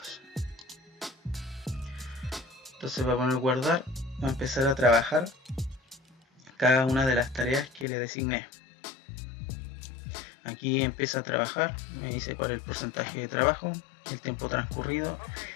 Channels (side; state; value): right; drops out; at 7.9 s